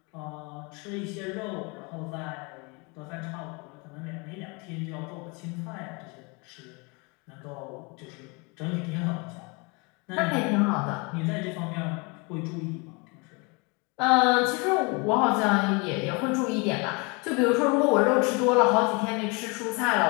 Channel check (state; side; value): quieter; right; 30.0 dB